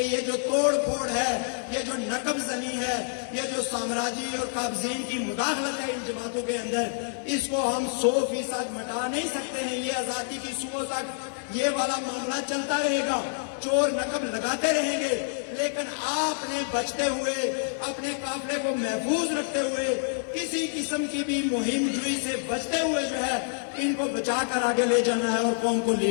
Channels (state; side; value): silent; right; digital silence